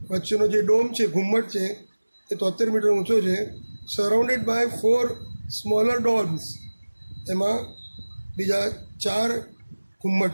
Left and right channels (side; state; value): both; inverted; correlation -1.00